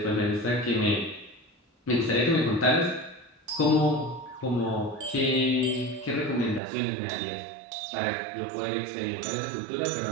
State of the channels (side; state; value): left; drops out; at 6.6 s